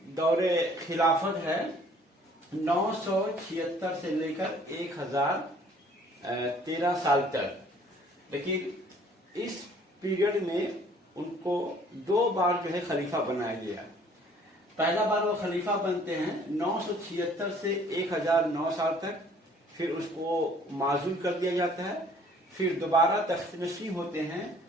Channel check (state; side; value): normal; both; correlation 0.56